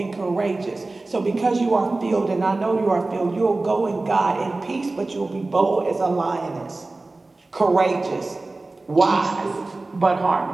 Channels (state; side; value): quieter; left; 3.2 dB